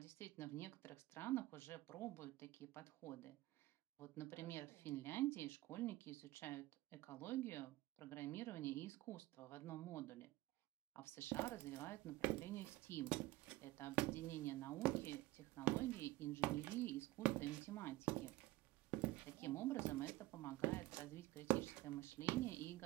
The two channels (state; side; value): quieter; left; 18.1 dB